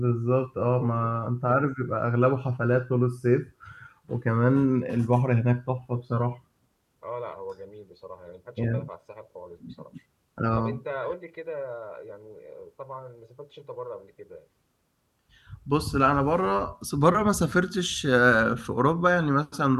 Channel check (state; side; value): identical; both; correlation 1.00